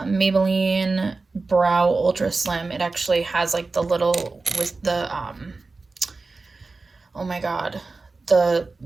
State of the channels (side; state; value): left; quieter; 3.7 dB